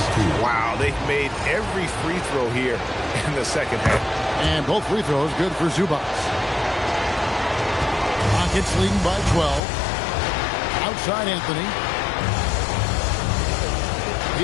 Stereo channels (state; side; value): drops out; right; at 9.6 s